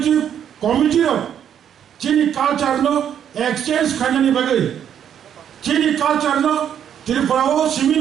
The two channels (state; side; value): quieter; left; 9.2 dB